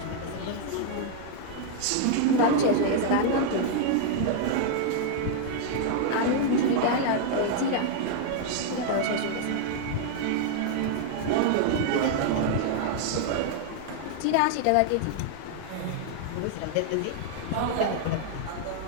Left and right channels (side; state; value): both; different; correlation 0.00